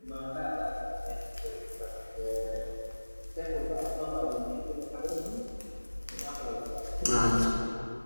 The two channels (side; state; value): both; inverted; correlation -1.00